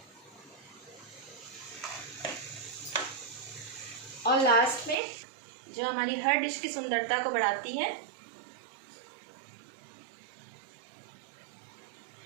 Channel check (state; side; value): drops out; left; at 5.0 s